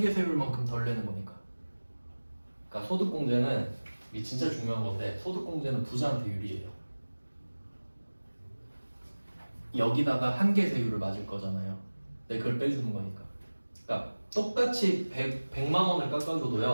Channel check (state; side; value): inverted; both; correlation -1.00